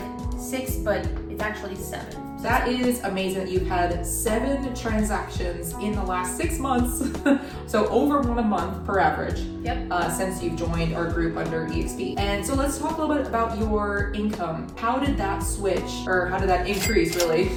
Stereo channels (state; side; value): identical; both; correlation 1.00